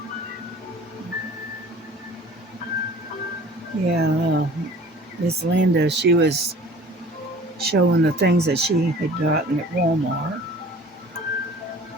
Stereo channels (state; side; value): normal; both; correlation 0.47